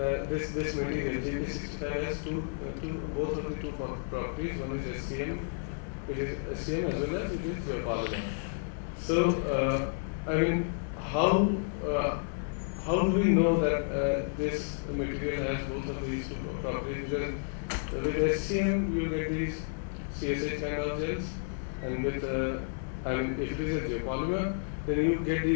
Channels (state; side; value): silent; right; digital silence